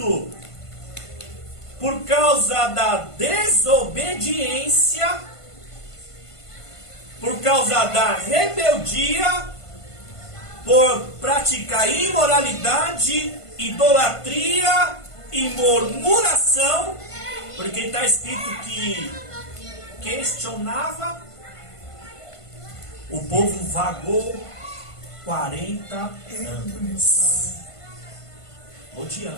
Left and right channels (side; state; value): right; late; 1.5 ms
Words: por causa da desobediência, por causa da rebeldia, por praticar imoralidade, idolatria e murmuração, porque está escrito que questionava, o povo vagou 40 anos,